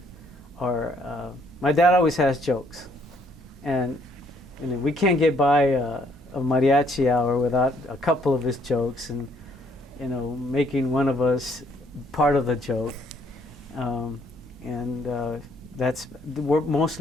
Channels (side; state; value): both; normal; correlation 0.67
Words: or my dad always has jokes, and we can't get by a mariachi hour without a couple of his jokes, and you know, making one of us part of the joke, and we're